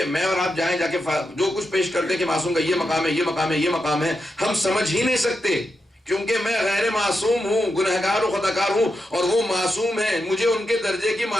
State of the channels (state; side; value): normal; both; correlation 0.87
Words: میں اور آپ جائیں جا کے جو کچھ پیش کرتے کہ معصوم کا یہ مقام ہے، یہ مقام ہے، یہ مقام ہے، ہم سمجھ ہی نہیں سکتے، کیونکہ میں غیر معصوم ہوں، گنہگار و خطاکار ہوں، اور وہ معصوم ہیں، مجھے ان کے درجے کی